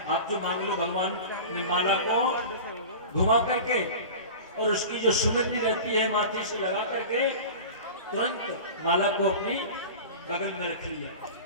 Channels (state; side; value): inverted; both; correlation -0.34